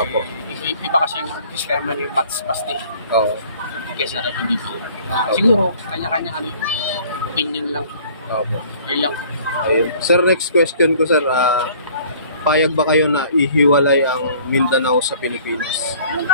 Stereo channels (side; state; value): both; inverted; correlation -0.53